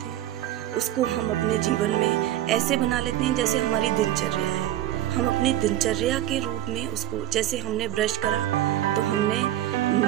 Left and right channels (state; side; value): quieter; left; 13.2 dB